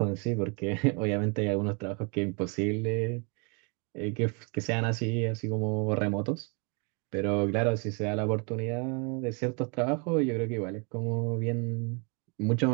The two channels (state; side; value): quieter; left; 34.8 dB